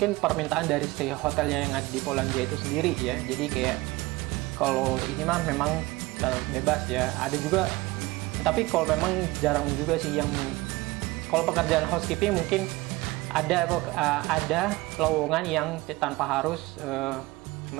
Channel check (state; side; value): quieter; left; 21.1 dB